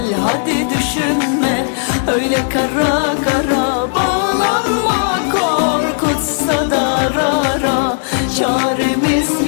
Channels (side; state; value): right; silent; 70 dB below the other